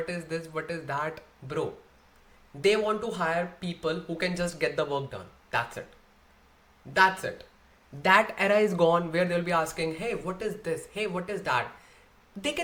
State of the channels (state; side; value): identical; both; correlation 1.00